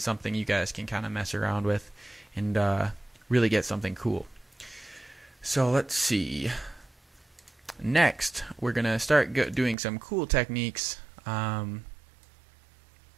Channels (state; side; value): drops out; left; at 9.8 s